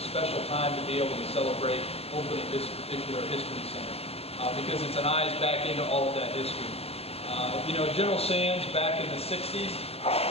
a special time to be able to celebrate opening this particular history center, because it's an eyes back into all of that history. General Sands back in the 60s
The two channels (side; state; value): right; late; 0.29 ms